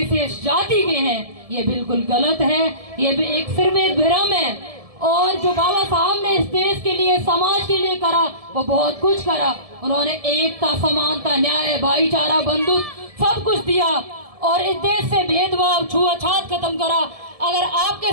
जाति के हैं। ये बिल्कुल गलत है, ये सिर्फ एक भ्रम है। और जो बाबा साहब ने इस देश के लिए, समाज के लिए करा, वो बहुत कुछ करा। उन्होंने एकता, समानता, न्याय, भाईचारा, बंधुत्व सब कुछ दिया और इस देश से भेदभाव, छुआछूत खत्म करा। अगर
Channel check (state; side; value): late; left; 1.7 ms